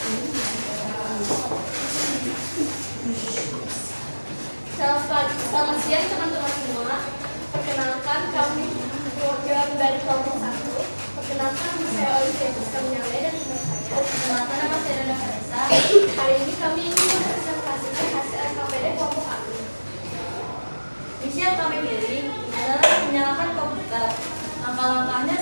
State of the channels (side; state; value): both; inverted; correlation -1.00